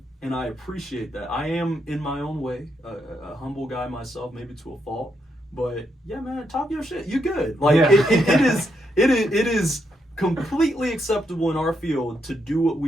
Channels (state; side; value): normal; both; correlation 0.79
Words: and I appreciate that. I am, in my own way, a humble guy myself, maybe to a fault. But yeah, man, talk your shit. You good? Like it is completely acceptable in our field to do what